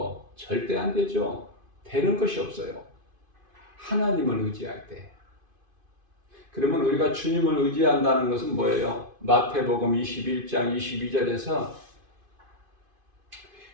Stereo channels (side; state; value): left; late; 2.5 ms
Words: 절대 안 되죠. 되는 것이 없어요. 하나님을 의지할 때. 그러면 우리가 주님을 의지한다는 것은 뭐예요? 마태복음 21장 22절에서